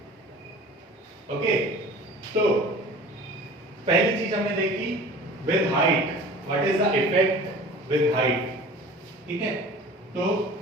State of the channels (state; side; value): normal; both; correlation 0.42